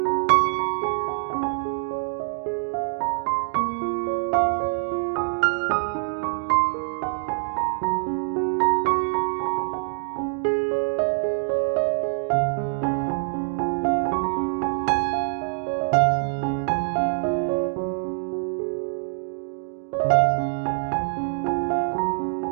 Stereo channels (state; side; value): silent; left; digital silence